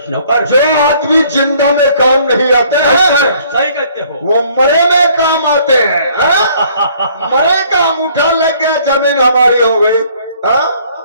नौकर। जो आदमी जिंदा में काम नहीं आते हैं सही कहते हो। वो मरे में काम आते हैं। हाँ? मरे का अंगूठा लग गया, जमीन हमारी हो गई। हाँ?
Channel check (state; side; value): inverted; both; correlation -0.60